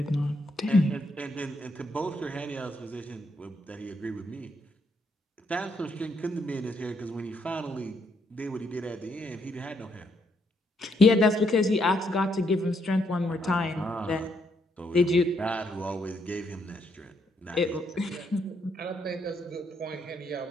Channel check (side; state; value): both; normal; correlation 0.75